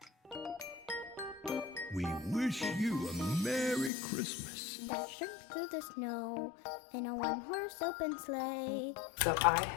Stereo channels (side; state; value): right; drops out; at 3.9 s